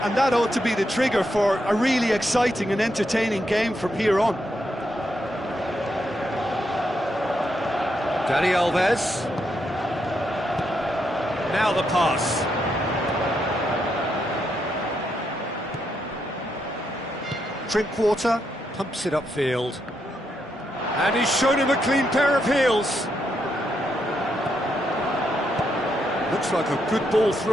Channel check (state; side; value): normal; both; correlation 0.80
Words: And that ought to be the trigger for a really exciting and entertaining game from here on. Dani Alves. Now the pass. Drinkwater pumps it upfield. And he's shown him a clean pair of heels. Looks like a good ball